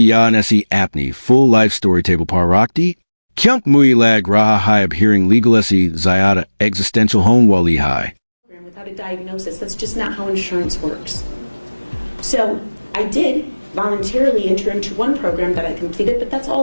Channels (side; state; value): both; inverted; correlation -1.00